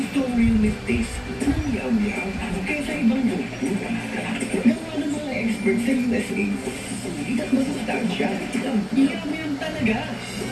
ang real meat taste. Yum-yum. Kaysa ibang luto. Gawa ng mga experts sa USA. Sulit at masustansya. Yum-yum talaga.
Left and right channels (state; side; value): identical; both; correlation 1.00